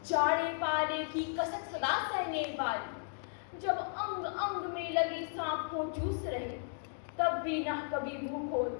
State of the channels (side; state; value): right; silent; digital silence